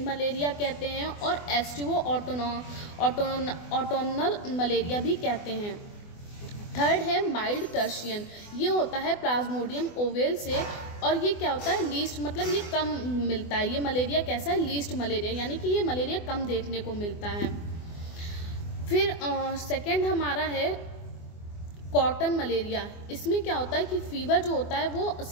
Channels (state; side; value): late; right; 24 ms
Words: मलेरिया कहते हैं और एस्टिवो ऑटोनल मलेरिया भी कहते हैं। थर्ड है माइल्ड टर्शियन, ये होता है प्लाज्मोडियम ओवेल से, और ये क्या होता है? लीस्ट, मतलब ये कम मिलता है। ये मलेरिया कैसा है? लीस्ट मलेरिया, यानी कि ये मलेरिया कम देखने को मिलता है। फिर सेकंड हमारा है कॉटन मलेरिया। इसमें क्या होता है कि फीवर जो होता है वो